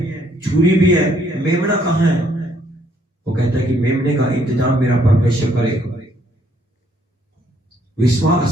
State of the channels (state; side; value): normal; both; correlation 0.68